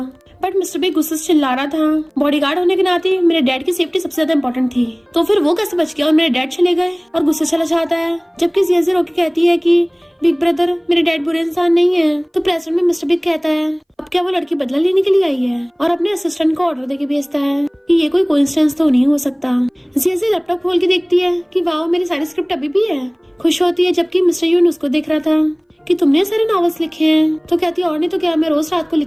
बट मिस्टर बिग गुस्से से चिल्ला रहा था, बॉडीगार्ड होने के नाते मेरे डैड की सेफ्टी सबसे ज्यादा इंपॉर्टेंट थी, तो फिर वो कैसे बच गया और मेरे डैड चले गए, और गुस्से चला जाता है। जबकि जिया रोके कहती है कि बिग ब्रदर मेरे डैड बुरे इंसान नहीं है। तो प्रेसिडेंट में मिस्टर बिग कहता है, अब क्या वो लड़की बदला लेने के लिए आई है, और अपने असिस्टेंट को ऑर्डर देके भेजता है कि ये कोई कोइंसिडेंस तो नहीं हो सकता। जिया लैपटॉप खोल के देखती है कि वाओ मेरी सारी स्क्रिप्ट अभी भी है, खुश होती है। जबकि मिस्टर यून उसको देख रहा था कि तुमने सारे नॉवेल्स लिखे हैं। तो कहती है और नहीं तो क्या, मैं रोज रात को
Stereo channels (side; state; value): both; identical; correlation 1.00